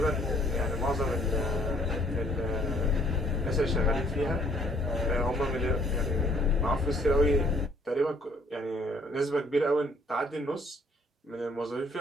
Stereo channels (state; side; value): normal; both; correlation 0.62